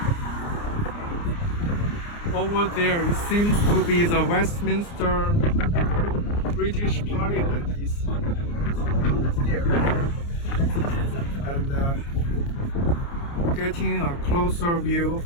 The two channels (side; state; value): right; late; 29 ms